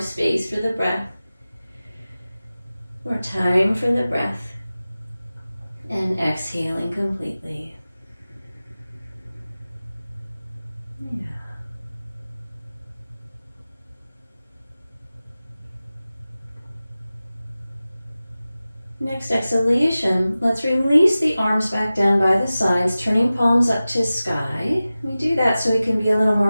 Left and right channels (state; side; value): inverted; both; correlation -0.96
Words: space for the breath, more time for the breath, and exhaling completely. Yeah. Next exhalation, let's release the arms back down by the sides, turning palms up to sky. We do that so we can be a little